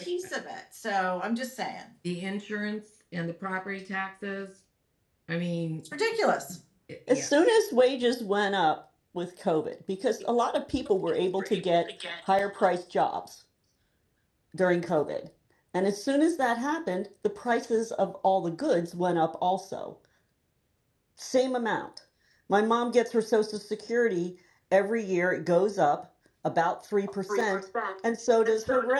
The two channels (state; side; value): identical; both; correlation 1.00